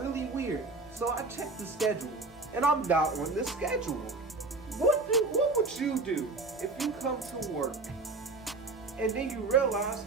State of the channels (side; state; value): left; quieter; 3.5 dB